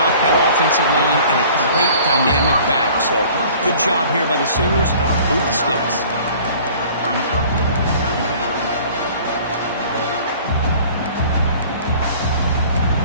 that offensive line and a great dynamic back. So good job here by the Sooners. Move the sticks.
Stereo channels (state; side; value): inverted; both; correlation -0.49